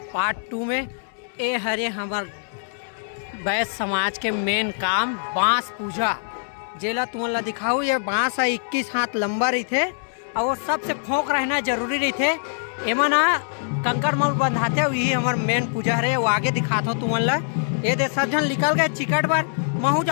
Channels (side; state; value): right; silent; digital silence